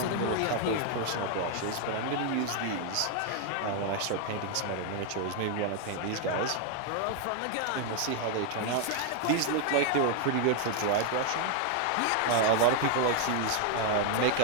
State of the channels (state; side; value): different; both; correlation 0.00